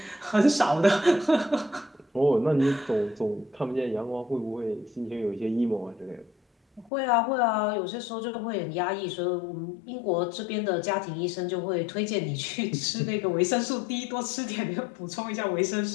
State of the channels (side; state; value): right; drops out; at 6.9 s